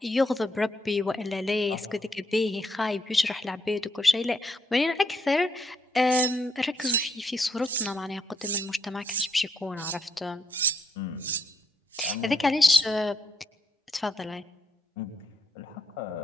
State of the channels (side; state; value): both; normal; correlation 0.75